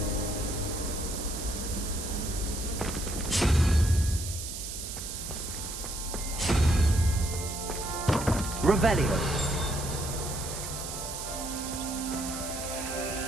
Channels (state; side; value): noise; right; hiss, 7 dB below the sound